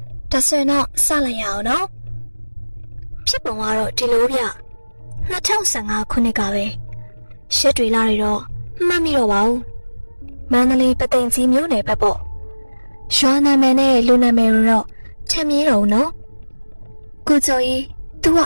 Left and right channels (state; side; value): inverted; both; correlation -1.00